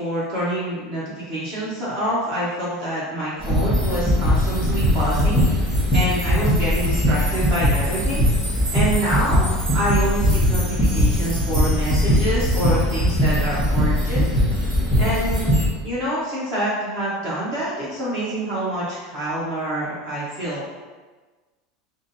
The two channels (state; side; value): normal; both; correlation 0.45